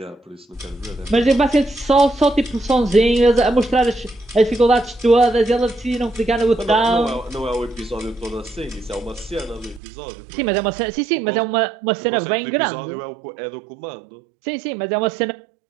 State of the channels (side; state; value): left; drops out; at 9.8 s